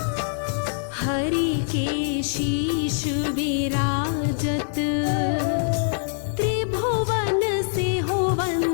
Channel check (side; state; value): right; silent; digital silence